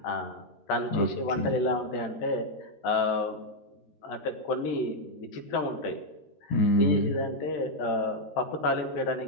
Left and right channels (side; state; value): right; late; 14 ms